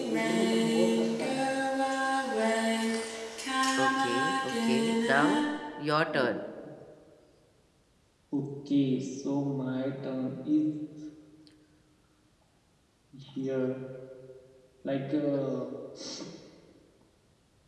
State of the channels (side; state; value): both; identical; correlation 1.00